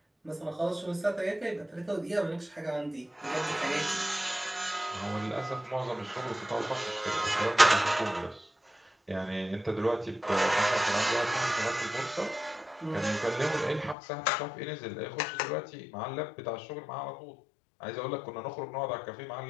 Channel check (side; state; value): right; drops out; at 14.0 s